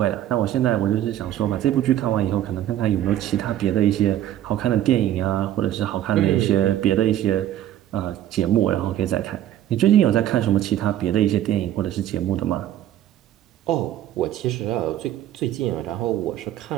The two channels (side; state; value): left; quieter; 12.1 dB